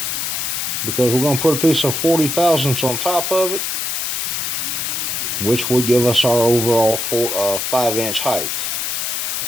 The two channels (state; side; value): noise; left; hiss, 1 dB below the sound